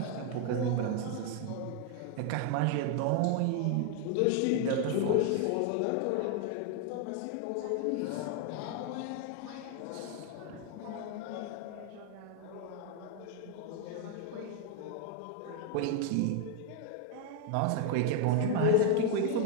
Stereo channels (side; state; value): both; different; correlation 0.00